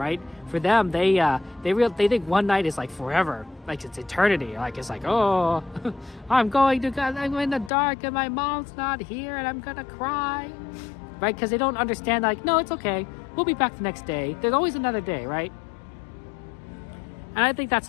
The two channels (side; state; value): right; drops out; at 7.7 s